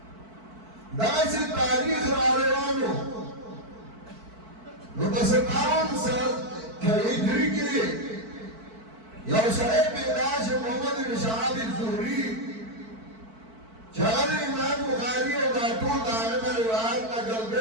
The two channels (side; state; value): left; late; 4.5 ms